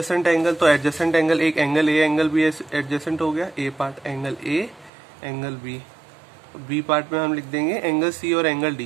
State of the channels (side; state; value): left; drops out; at 4.9 s